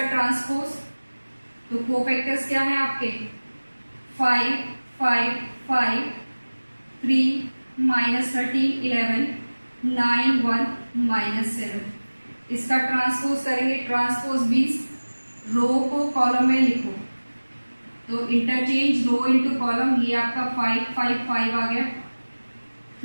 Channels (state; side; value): inverted; both; correlation -1.00